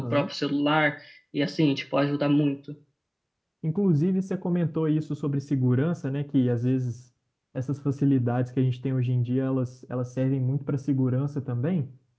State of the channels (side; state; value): both; identical; correlation 1.00